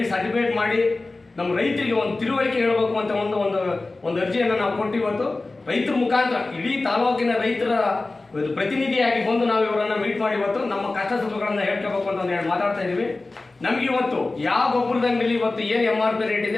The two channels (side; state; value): right; quieter; 3.3 dB